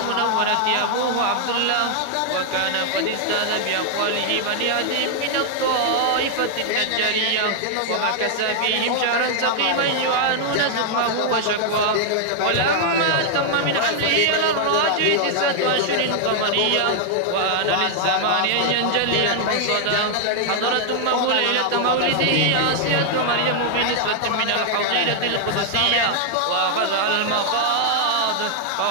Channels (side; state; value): both; different; correlation -0.01